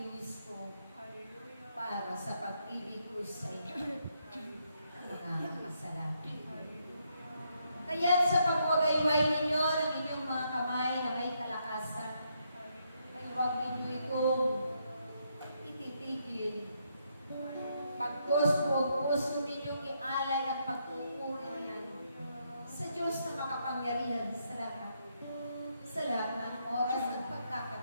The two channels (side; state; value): both; inverted; correlation -0.77